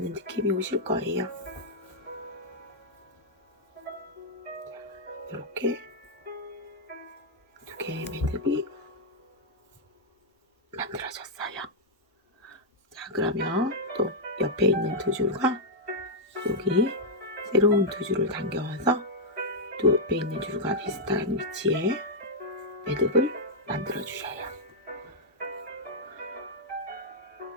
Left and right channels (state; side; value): normal; both; correlation -0.05